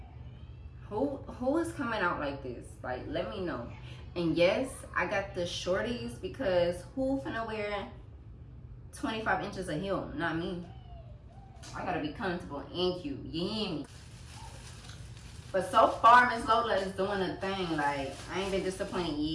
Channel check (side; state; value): both; identical; correlation 1.00